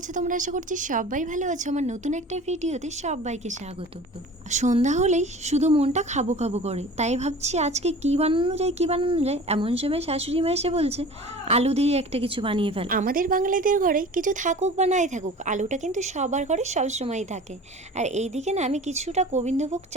তোমরা? আশা করছি সবাই ভালো আছো। আমার নতুন একটা ভিডিওতে সবাইকে স্বাগত। সন্ধ্যা হলেই শুধু মনটা খাবো খাবো করে, তাই ভাবছি আজকে কি বানানো যায়। এমন সময় শাশুড়ি মা এসে বলছে আলু দিয়ে একটা কিছু বানিয়ে ফেল। আমাদের বাঙালিদের ঘরে কিছু থাকুক বা নাই থাকুক, আলুটা কিন্তু সবার ঘরে সবসময়ই থাকে। আর এইদিকে না আমি কিছুটা গোবিন্দভোগ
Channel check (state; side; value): normal; both; correlation 0.40